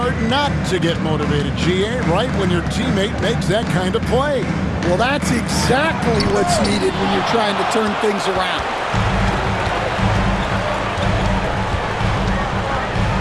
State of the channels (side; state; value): both; identical; correlation 1.00